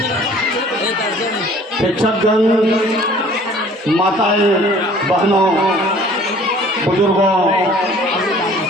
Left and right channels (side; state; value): both; normal; correlation 0.52